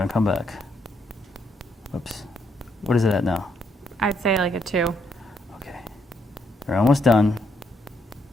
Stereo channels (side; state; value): both; normal; correlation 0.75